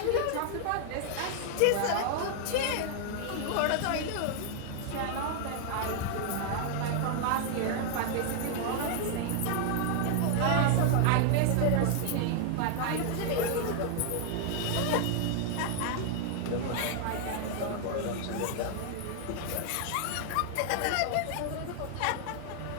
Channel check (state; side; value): different; both; correlation 0.00